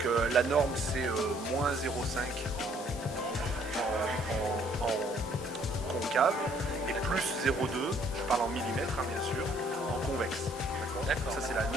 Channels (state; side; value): normal; both; correlation 0.63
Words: la norme c'est moins 0,5 en concave et plus 0,2, je parle en millimètres bien sûr, en convexe. D'accord. Ça c'est la